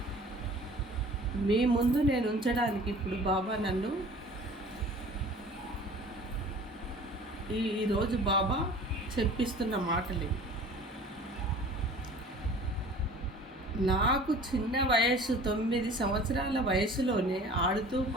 మీ ముందు నేను ఉంచడానికి ఇప్పుడు బాబా నన్ను ఈరోజు బాబా చెప్పిస్తున్న మాటలు. నాకు చిన్న వయసు 9 సంవత్సరాల వయసులోనే ఆడుతూ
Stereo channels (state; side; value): normal; both; correlation 0.46